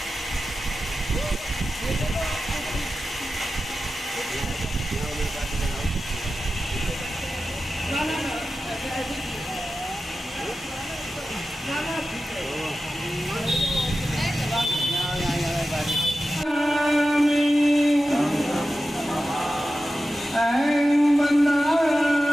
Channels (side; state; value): both; normal; correlation 0.93